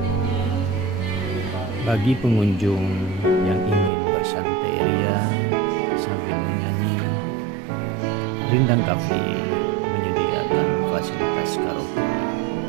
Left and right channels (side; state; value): left; drops out; at 3.9 s